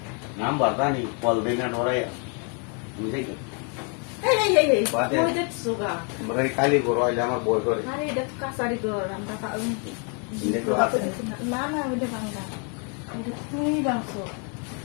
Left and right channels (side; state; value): right; quieter; 38.5 dB